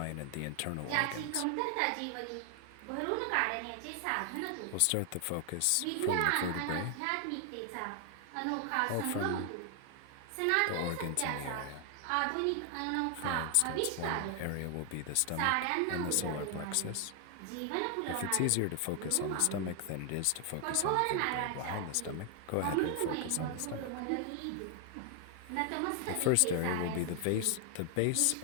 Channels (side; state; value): both; different; correlation 0.00